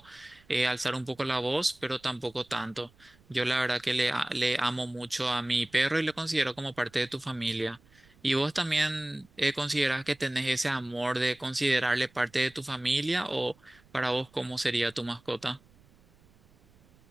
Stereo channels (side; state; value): right; noise; rumble, 29 dB below the sound